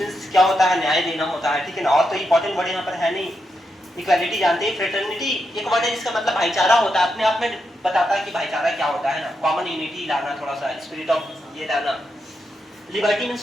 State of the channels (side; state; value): both; normal; correlation 0.84